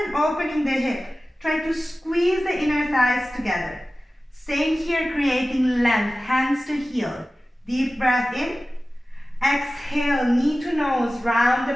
than opening the hip, try to squeeze the inner thighs together. Staying here, creating length, hands to heel. Deep breath in. Exhale, knee to nose, round the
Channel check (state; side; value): normal; both; correlation 0.96